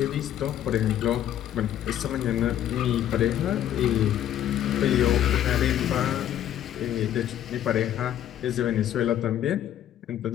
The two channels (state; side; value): quieter; right; 11.2 dB